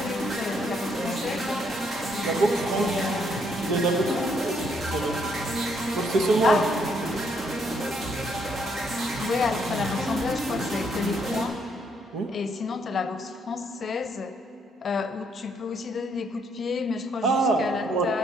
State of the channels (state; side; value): normal; both; correlation 0.72